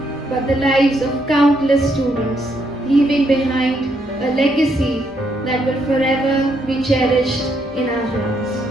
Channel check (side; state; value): both; normal; correlation 0.75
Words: but the lives of countless students, leaving behind a legacy that will forever be cherished in our hearts.